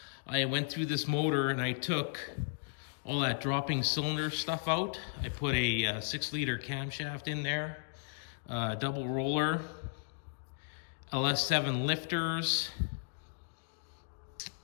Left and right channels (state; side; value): silent; right; digital silence